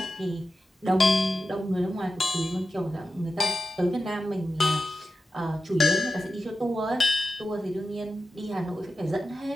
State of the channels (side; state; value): both; normal; correlation 0.91